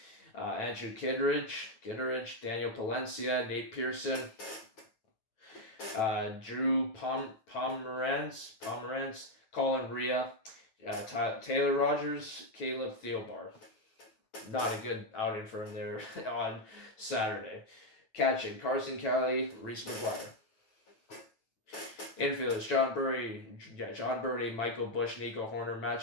Andrew Kittredge, Daniel Palencia, Nate Pearson, Drew Pomerantz, Colin Ria, Taylor Rogers, Caleb Theobar. Not a good outing for him there on Saturday. Catching, Carson Kelly, Reese McGuire. Infielders, John Birdie, Michael Bush, Nico Horner, Matt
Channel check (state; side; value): late; right; 9.1 ms